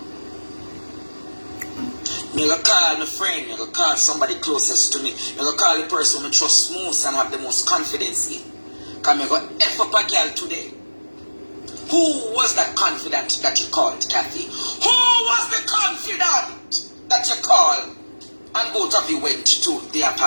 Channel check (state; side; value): inverted; both; correlation -1.00